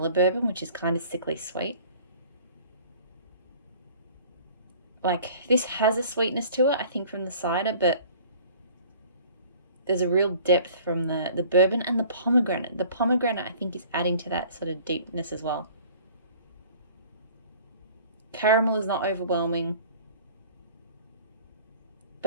bourbon, which is kind of sickly sweet. Like, this has a sweetness to it, I think, from the cider, but there's a real depth from the bourbon and the pomegranate. The pomegranate, I think, is adding to that sort of deepness as well. Caramel is not overwhelming,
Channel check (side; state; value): both; inverted; correlation -0.49